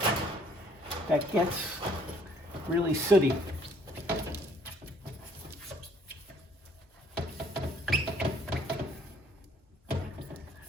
that gets really sooty.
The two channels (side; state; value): both; normal; correlation 0.62